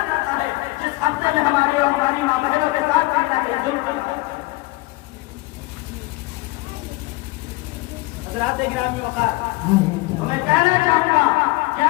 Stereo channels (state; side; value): quieter; right; 21.9 dB